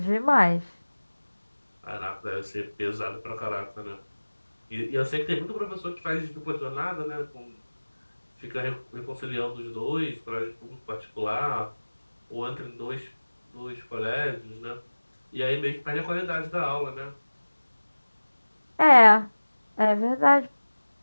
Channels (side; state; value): both; inverted; correlation -1.00